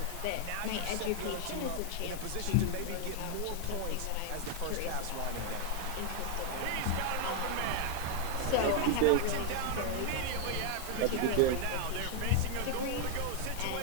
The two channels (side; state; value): both; different; correlation 0.00